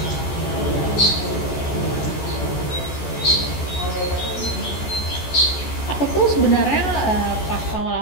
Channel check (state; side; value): late; right; 14 ms